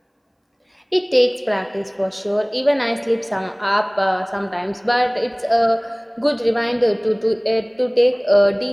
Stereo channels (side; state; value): both; identical; correlation 1.00